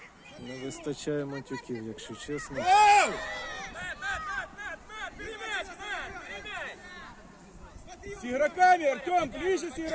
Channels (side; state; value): both; identical; correlation 1.00